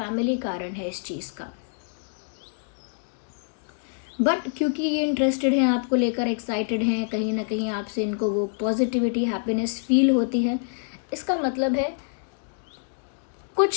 कारण है इस चीज़ का। बट क्योंकि ये इंटरेस्टेड हैं आपको लेकर, एक्साइटेड हैं, कहीं ना कहीं आपसे इनको वो पॉजिटिविटी, हैप्पीनेस फील होती है, इसका मतलब है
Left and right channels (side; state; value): right; silent; digital silence